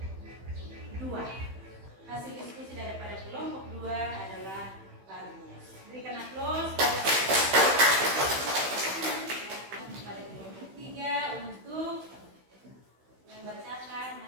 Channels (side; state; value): left; late; 16 ms